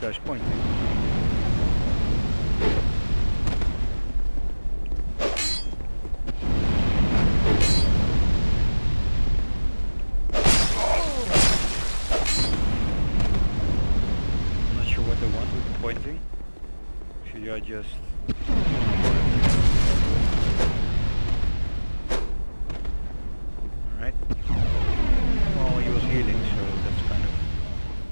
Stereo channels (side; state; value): both; inverted; correlation -1.00